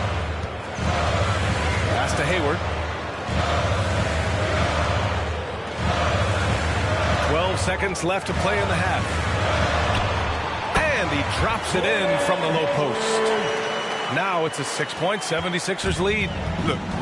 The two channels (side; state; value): both; identical; correlation 1.00